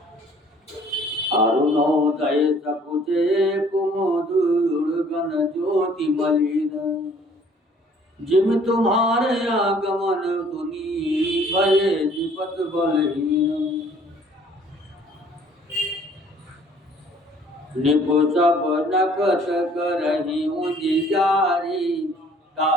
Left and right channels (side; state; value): both; normal; correlation 0.57